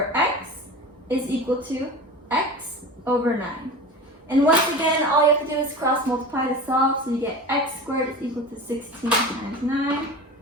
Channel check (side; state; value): both; normal; correlation 0.32